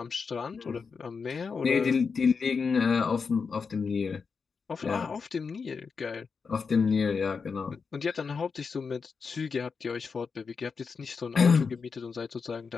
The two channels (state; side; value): quieter; right; 5.3 dB